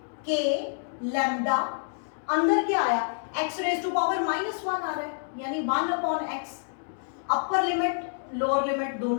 K लैम्डा, अंदर क्या आया, x रेज टू पावर -1 आ रहा है, यानी 1 upon x, upper limit lower limit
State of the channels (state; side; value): silent; right; digital silence